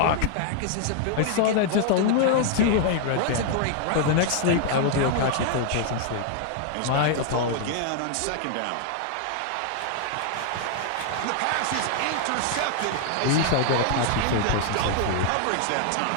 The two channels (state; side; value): different; both; correlation 0.00